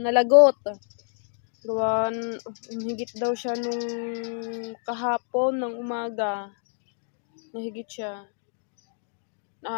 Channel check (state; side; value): silent; right; digital silence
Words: Gawan, higit daw siya nung kahapon ng umaga. Nahigit siya.